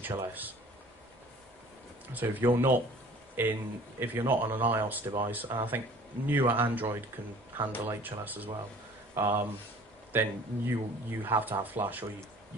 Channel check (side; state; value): both; normal; correlation 0.49